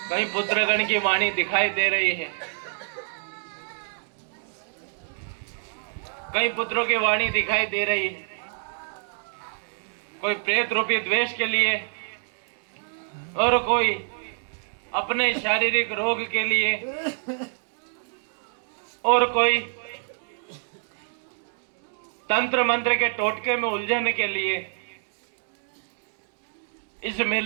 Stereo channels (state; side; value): silent; left; digital silence